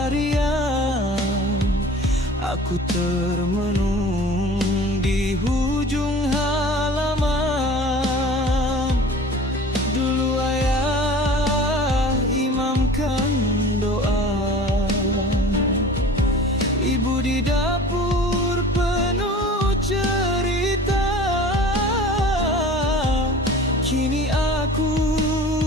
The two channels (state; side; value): normal; both; correlation 0.42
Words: riang, aku termenung di hujung halaman. Dulu ayah imamkan doa, ibu di dapur penuh cerita. Kini aku